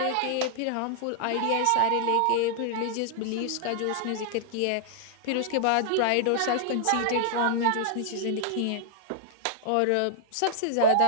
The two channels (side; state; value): both; different; correlation -0.01